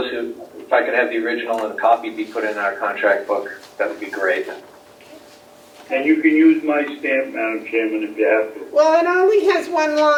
if I could have the original and a copy be put in our contract book, that would be great. and you can use my stamp, Madam Chairman, if you have to. Well, it only has one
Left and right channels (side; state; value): both; identical; correlation 1.00